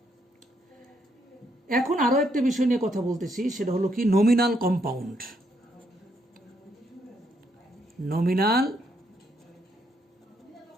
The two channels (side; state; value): both; normal; correlation 0.75